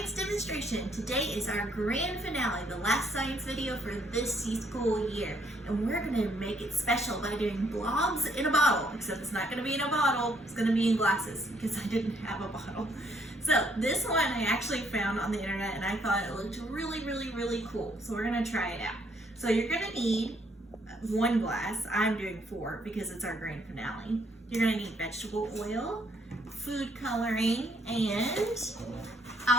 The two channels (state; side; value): normal; both; correlation 0.69